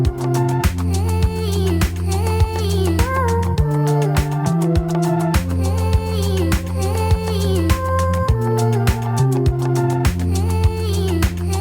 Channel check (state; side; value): identical; both; correlation 1.00